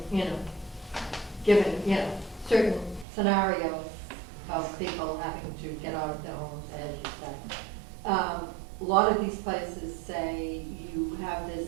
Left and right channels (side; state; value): left; drops out; at 3.1 s